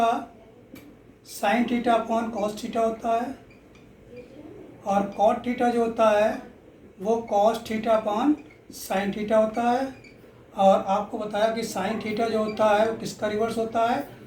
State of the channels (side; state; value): both; identical; correlation 1.00